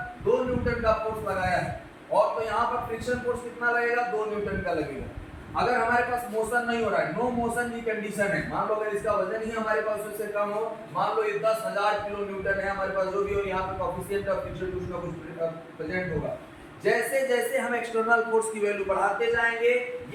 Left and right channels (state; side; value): identical; both; correlation 1.00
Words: 2 न्यूटन का फोर्स लगाया है, और तो यहाँ पर फ्रिक्शन फोर्स कितना लगेगा, 2 न्यूटन का लगेगा। अगर हमारे पास मोशन नहीं हो रहा है, नो मोशन की कंडीशन है, मान लो अगर इसका वजन ही हमारे पास उससे कम हो, मान लो ये 10,000 किलो न्यूटन है हमारे पास, जो भी हो, यहाँ पे कोएफिशिएंट ऑफ फ्रिक्शन कुछ ना कुछ प्रेजेंट होगा। जैसे जैसे हम एक्सटर्नल फोर्स की वैल्यू बढ़ाते जाएंगे,